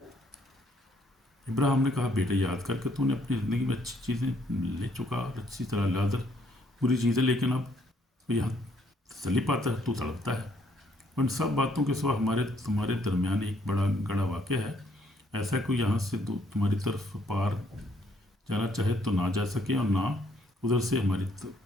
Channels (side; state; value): both; normal; correlation 0.68